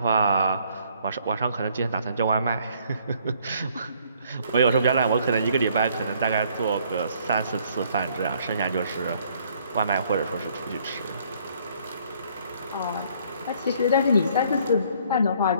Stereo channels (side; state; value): both; inverted; correlation -0.63